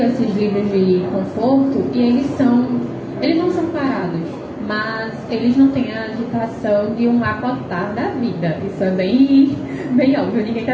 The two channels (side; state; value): both; identical; correlation 1.00